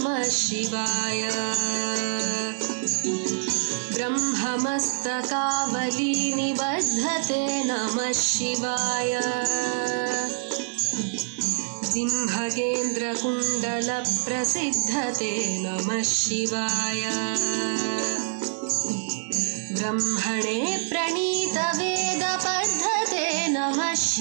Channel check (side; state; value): left; silent; digital silence